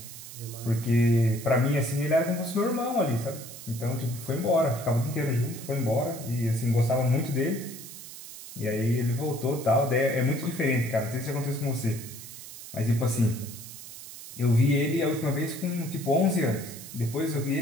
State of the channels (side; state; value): right; noise; hiss, 13 dB below the sound